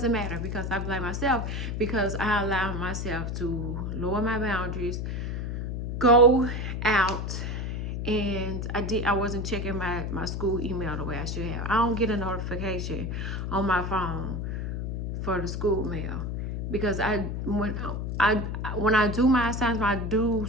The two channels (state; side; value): noise; left; hum, 3 dB below the sound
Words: matter because I blame myself, because I allow myself to lower my boundaries, go out, and I wasn't checking my school email the way I should have. I don't get a notification on my phone for the school mail, because when I do my assignments, I do